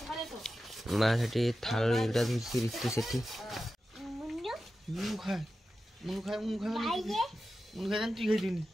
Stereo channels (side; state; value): both; normal; correlation 0.93